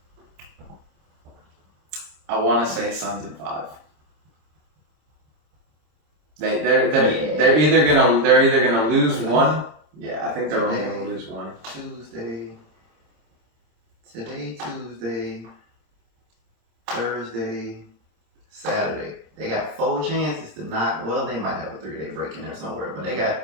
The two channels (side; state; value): left; late; 26 ms